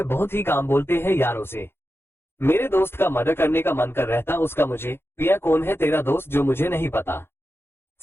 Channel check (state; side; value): late; right; 0.11 ms